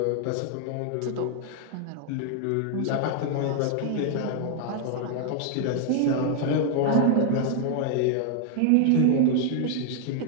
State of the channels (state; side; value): different; both; correlation 0.00